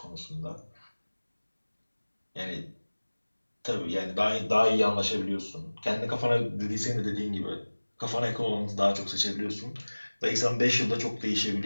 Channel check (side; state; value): both; inverted; correlation -1.00